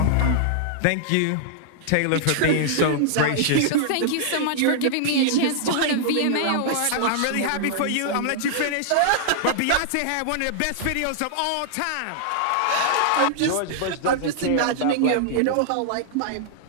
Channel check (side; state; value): both; different; correlation -0.01